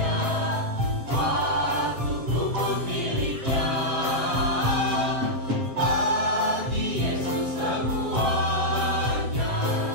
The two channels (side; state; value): left; late; 7.6 ms